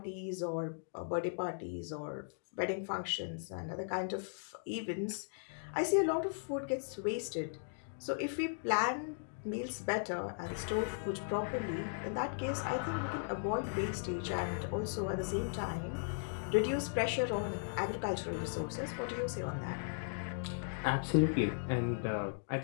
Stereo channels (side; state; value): right; silent; digital silence